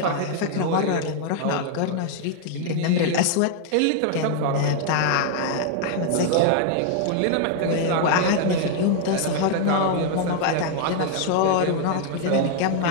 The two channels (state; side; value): different; both; correlation 0.00